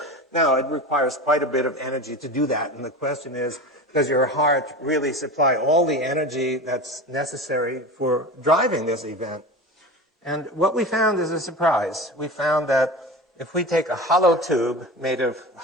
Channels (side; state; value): both; normal; correlation 0.30